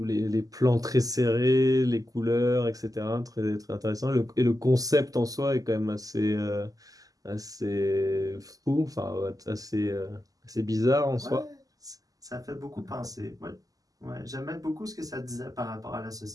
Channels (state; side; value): late; left; 0.17 ms